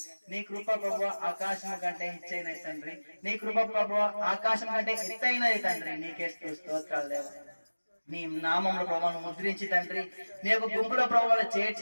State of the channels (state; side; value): inverted; both; correlation -1.00